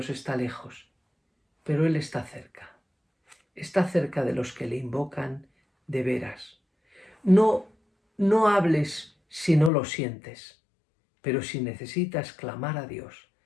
está lejos, pero Él está cerca. Está cerca de los que le invocan de veras. No hables si no lo sientes, pero si necesitas clamar a Dios,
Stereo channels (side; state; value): right; drops out; at 9.7 s